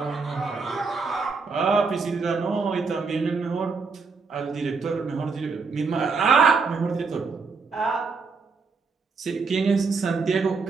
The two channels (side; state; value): left; quieter; 4.7 dB